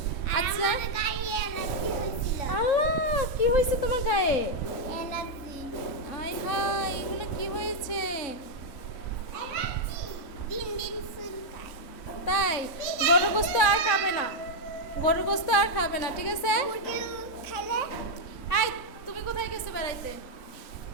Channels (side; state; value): right; late; 3.6 ms